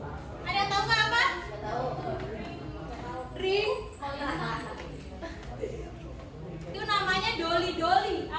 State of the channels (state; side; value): identical; both; correlation 1.00